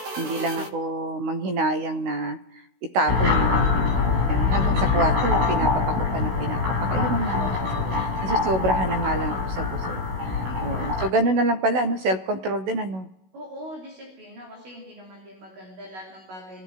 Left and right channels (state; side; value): late; left; 16 ms